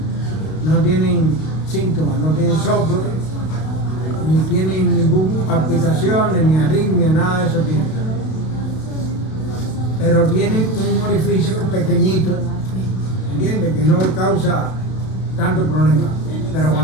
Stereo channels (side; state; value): right; late; 32 ms